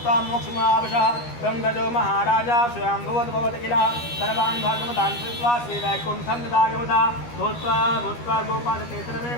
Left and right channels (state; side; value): late; right; 13 ms